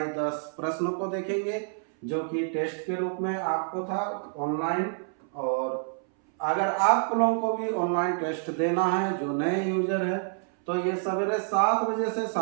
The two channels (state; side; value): silent; left; 59 dB below the other